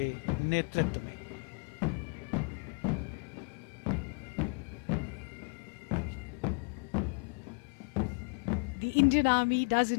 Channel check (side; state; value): right; quieter; 34.1 dB